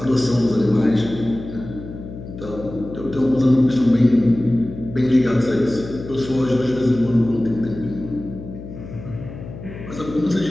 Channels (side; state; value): left; noise; hum, 12 dB below the sound